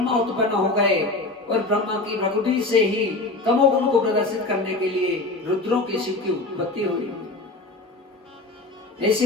उत्पन्न हो गए, और ब्रह्मा की प्रकृति से ही तमोगुण को प्रदर्शित करने के लिए रुद्रों के शिव की उत्पत्ति हुई।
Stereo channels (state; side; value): quieter; right; 3.1 dB